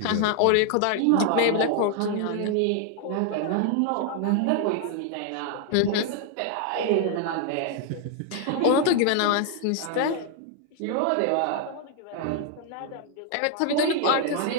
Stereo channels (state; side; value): different; both; correlation 0.00